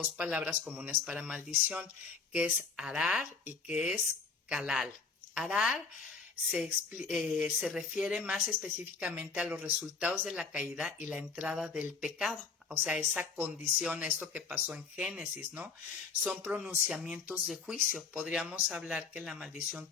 palabras comunes para maldición, que es arar y que es calal. Arar se refiere más específicamente a los resultados de la caída y la entrada del pecado. O sea, esa condición, esto que pasó en Génesis, ¿no? Son pronunciamientos de juicio. Podríamos hablar que la maldición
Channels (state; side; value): quieter; right; 4.9 dB